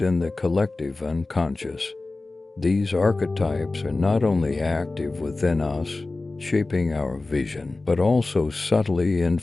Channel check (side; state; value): right; quieter; 3.3 dB